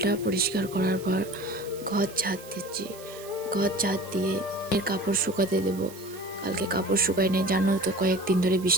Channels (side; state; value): right; noise; hiss, 18 dB below the sound